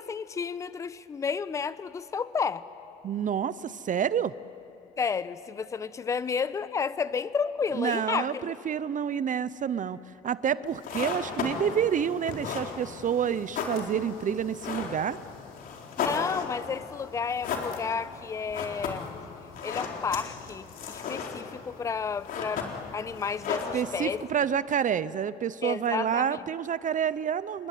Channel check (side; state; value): both; normal; correlation 0.31